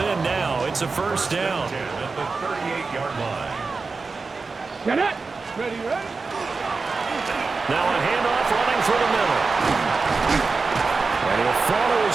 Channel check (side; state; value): left; quieter; 4.2 dB